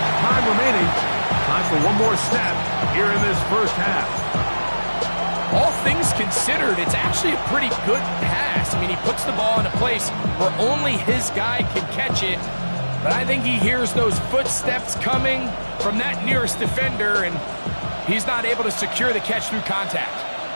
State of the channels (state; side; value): inverted; both; correlation -1.00